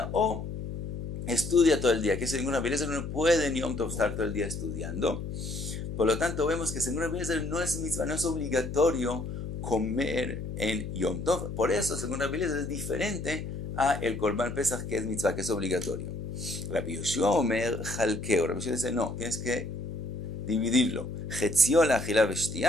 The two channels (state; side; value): noise; left; hum, 5 dB below the sound